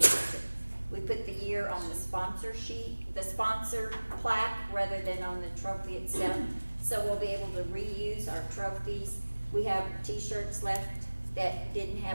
we put the year on the sponsor sheet, the sponsor plaque, rather than on the trophy itself. So we'll be able to reuse our trophies. We have t-shirts left that didn't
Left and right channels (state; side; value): inverted; both; correlation -1.00